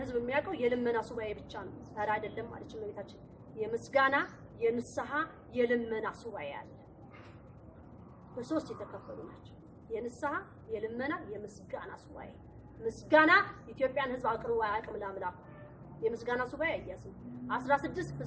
ሕዝብ የሚያውቀው የልመና ሱባኤ ብቻ ነው። ዛሬ አይደለም ማለት ነው። ቤታችን የምስጋና፣ የንስሐ፣ የልመና ሱባኤ አለ። በሶስት የተከፈሉ ናቸው። የንስሐ፣ የልመና፣ የምስጋና ሱባኤ። ምስጋና ኢትዮጵያን ሕዝብ አቅርቦ አያውቅም ለአምላኩ። የምስጋና ሱባኤ አያስም 16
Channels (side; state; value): both; identical; correlation 1.00